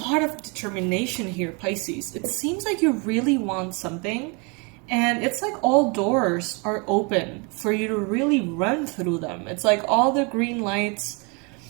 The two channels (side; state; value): left; quieter; 31.6 dB